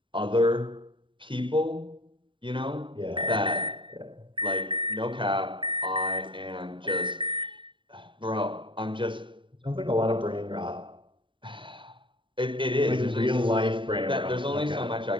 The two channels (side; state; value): left; late; 0.24 ms